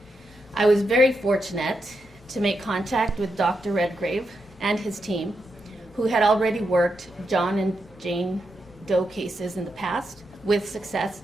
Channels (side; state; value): both; normal; correlation 0.84